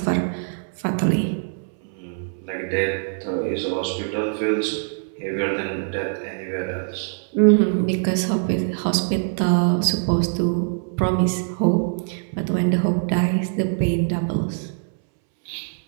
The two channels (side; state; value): left; silent; 63 dB below the other